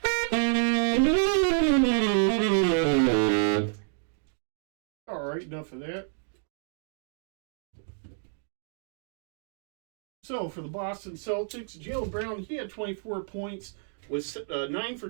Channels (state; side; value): silent; left; digital silence